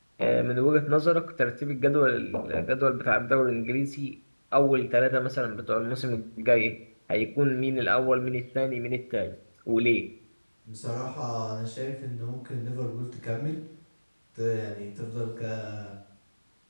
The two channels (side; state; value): both; inverted; correlation -1.00